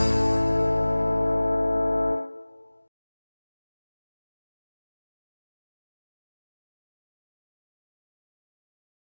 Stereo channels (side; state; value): both; inverted; correlation -1.00